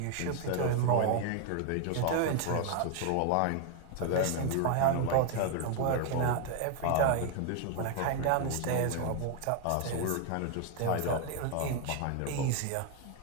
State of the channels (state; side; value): different; both; correlation 0.01